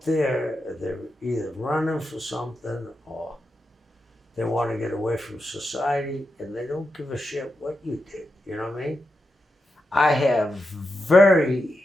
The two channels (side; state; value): both; normal; correlation 0.88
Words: there, they're either running for something or they want to get away from society, and they don't give a shit what you did. You know what I mean? I have